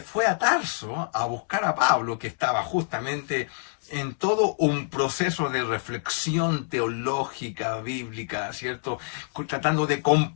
a Tarso a buscar a Pablo, que estaba justamente en todo un proceso de reflexión teológica, bíblica, ¿cierto? Tratando de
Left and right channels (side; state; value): right; silent; digital silence